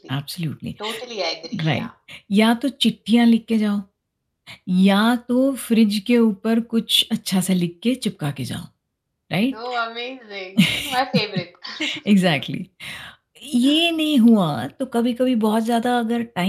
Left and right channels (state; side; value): identical; both; correlation 1.00